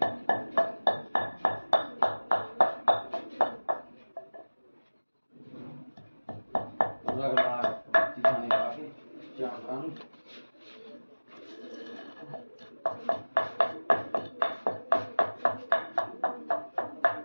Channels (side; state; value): both; inverted; correlation -1.00